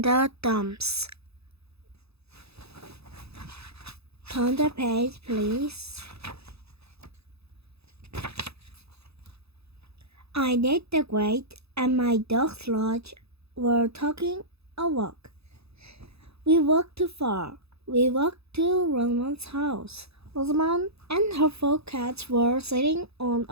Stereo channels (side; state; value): left; late; 0.79 ms